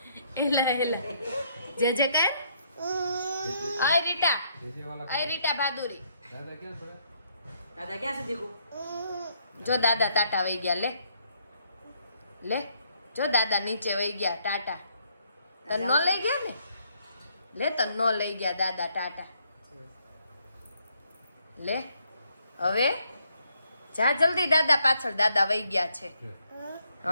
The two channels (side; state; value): both; inverted; correlation -0.71